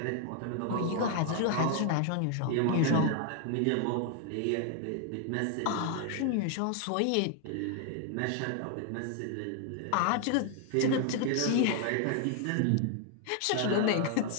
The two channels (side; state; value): both; different; correlation 0.00